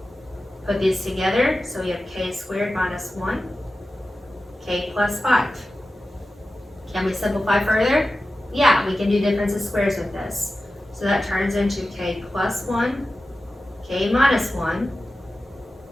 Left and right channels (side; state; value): both; normal; correlation 0.94